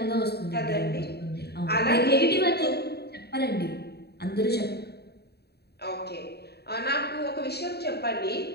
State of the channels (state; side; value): late; right; 0.47 ms